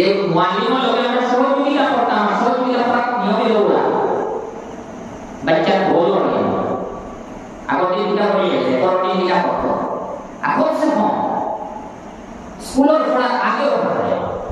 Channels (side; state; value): both; identical; correlation 1.00